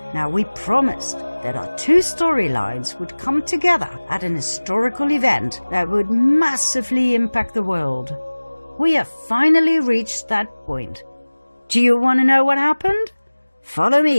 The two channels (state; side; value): inverted; both; correlation -1.00